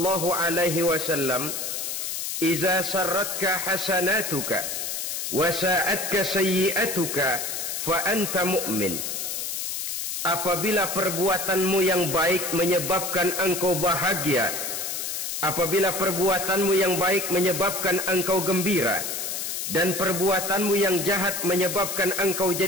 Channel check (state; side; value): noise; left; hiss, 3 dB below the sound